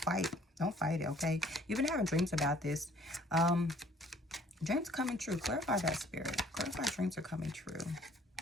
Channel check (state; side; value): normal; both; correlation 0.57